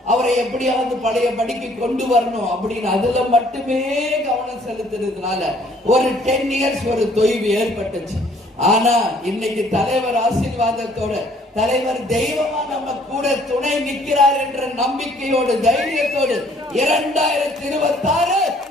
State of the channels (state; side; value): normal; both; correlation 0.60